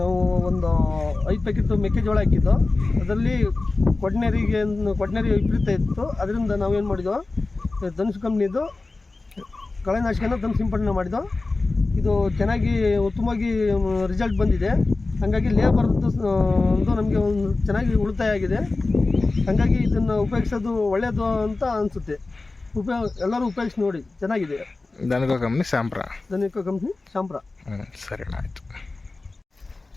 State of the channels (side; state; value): right; quieter; 3.4 dB